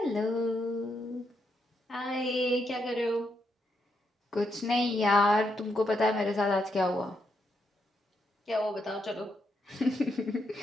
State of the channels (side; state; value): both; normal; correlation 0.80